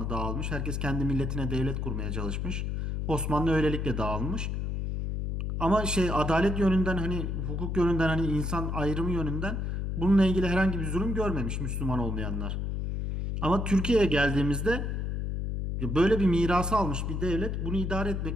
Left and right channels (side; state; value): left; noise; hum, 2 dB below the sound